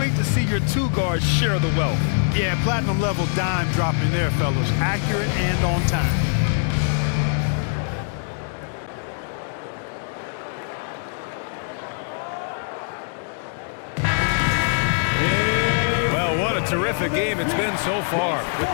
to see your two guards share the wealth. Yeah, platinum level dime dropping there, fellas. Accurate and on time. Well, what a terrific game it's been so far. With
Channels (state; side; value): silent; right; digital silence